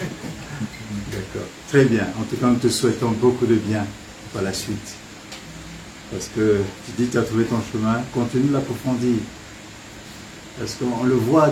D'accord. Très bien. En tout cas, nous te souhaitons beaucoup de bien par la suite. Parce que tu dis que tu as trouvé ton chemin, continue de l'approfondir. Parce qu'on le voit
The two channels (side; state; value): both; identical; correlation 1.00